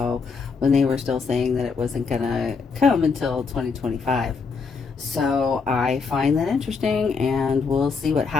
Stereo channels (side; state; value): right; quieter; 5.0 dB